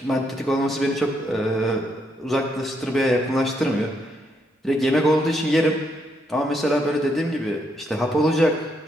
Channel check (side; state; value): both; normal; correlation 0.76